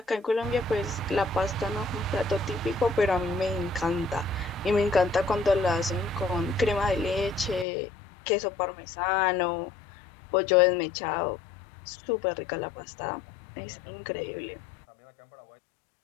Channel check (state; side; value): drops out; right; at 7.7 s